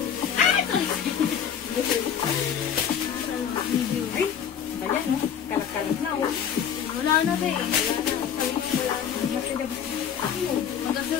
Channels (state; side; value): quieter; right; 8.2 dB